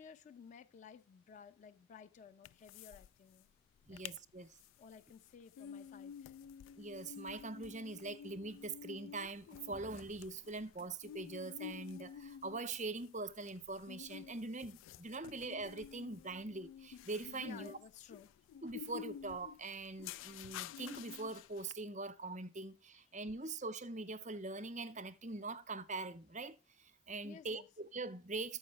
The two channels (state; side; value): normal; both; correlation 0.20